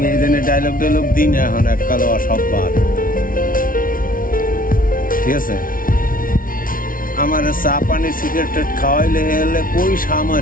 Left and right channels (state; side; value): late; right; 0.40 ms